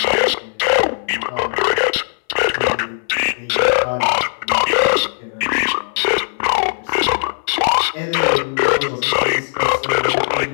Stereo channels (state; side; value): silent; right; 62 dB below the other